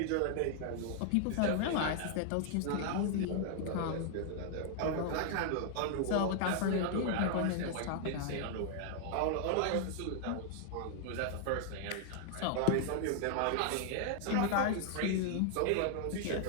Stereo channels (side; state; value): both; different; correlation 0.00